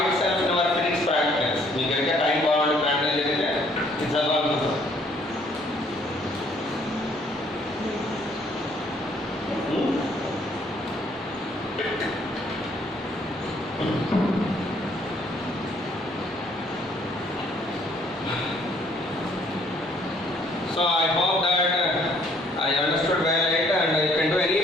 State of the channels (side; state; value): both; normal; correlation 0.63